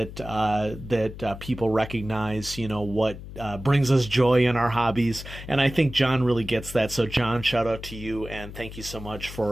people recognize, what brings us joy in our hobbies. And I think John really gets that. So John, shout out to you and thank you so much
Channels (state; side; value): noise; left; hum, 12 dB below the sound